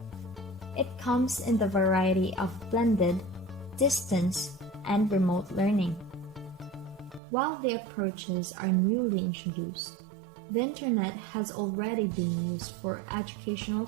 It comes in the variety of blended, distance, and remote learning. While the approaches are newly introduced, the internet has already been used for educational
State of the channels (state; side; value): drops out; left; at 7.2 s